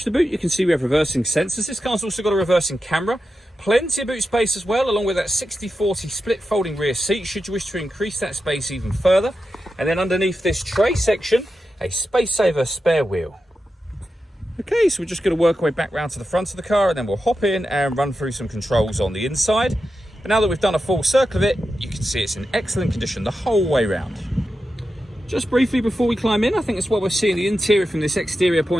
the boot, you can see we have reversing sensors. This car's also got a reversing camera. Plenty of boot space as well, along with that 60-40 split folding rear seat, should you wish to increase that space even further. And then underneath this tray section, a space saver spare wheel. Okay, so we're just going to work our way back round to the front of the car, and then we'll hop in and run through some controls on the inside. But now that we've done a full circle of it, you can see it's in excellent condition the whole way round. Just briefly before we climb in, I think it's what we're seeing the interior from this exterior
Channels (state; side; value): normal; both; correlation 0.90